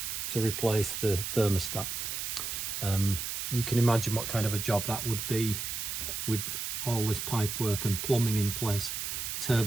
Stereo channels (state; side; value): noise; right; hiss, 3 dB below the sound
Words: to replace the thermostat. You can imagine what kind of a job that would be with all this pipe work and plumbing in place.